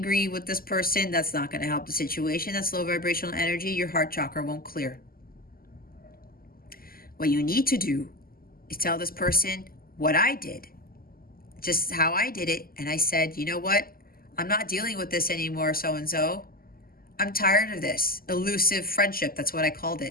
with this person, that's not going to help the situation. That's low vibrational energy. Your heart chakra won't clear. What you need to do is tell this person what I did, just how I did it. And I said, you know what? I'm not dealing with this anymore, so-and-so. I'm tired of this elusive friendship. That's what I called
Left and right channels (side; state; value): right; late; 0.42 ms